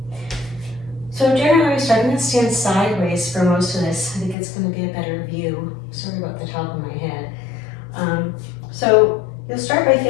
So generally we start, I'm going to stand sideways for most of this. I think it's going to be a better view. Sorry about the top of my head. So you'll start by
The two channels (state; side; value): drops out; right; at 4.4 s